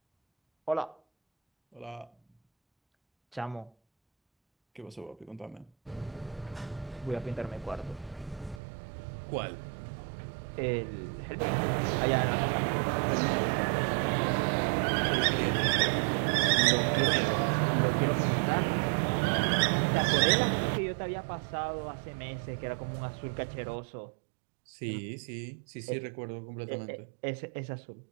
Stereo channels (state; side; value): drops out; left; at 8.6 s